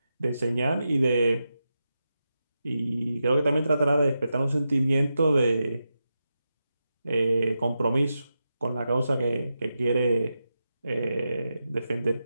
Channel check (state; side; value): inverted; both; correlation -0.89